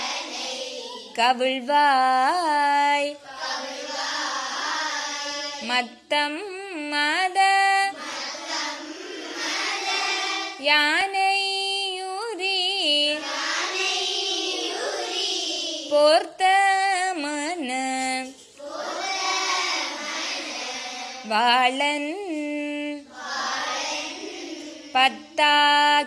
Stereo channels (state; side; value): identical; both; correlation 1.00